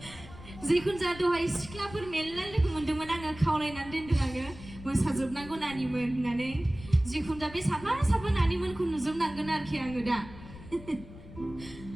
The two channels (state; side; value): noise; left; rumble, 16 dB below the sound